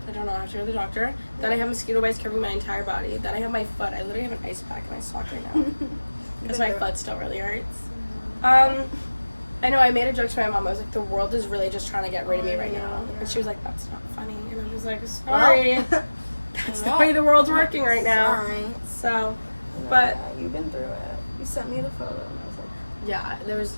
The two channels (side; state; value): both; inverted; correlation -1.00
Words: I don't know. I have to go to the doctor. Then I have mosquito bites covering my entire body. Then I have my foot. I literally have an ice pack in my sock right now because my foot still really hurts. I know I made a joke to my mom. I was like, the world is really just trying to get rid of me right now. And she was like, that's not funny. And I was like, sorry. That's the way the world's working right now. Sorry. So, but Yeah, you've been through it. You sent me the photo and I was like, yeah,